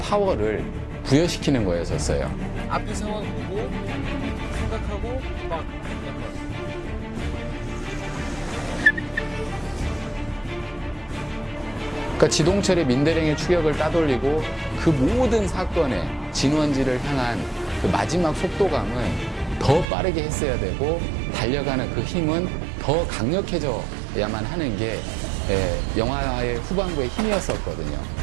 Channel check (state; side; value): drops out; left; at 19.9 s